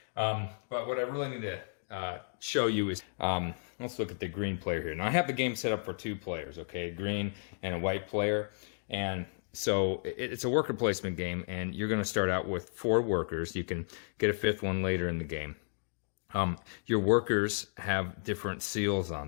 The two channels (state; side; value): silent; right; digital silence